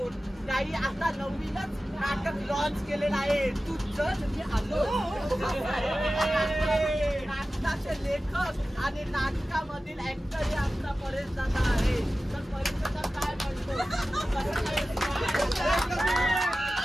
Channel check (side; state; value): both; normal; correlation 0.95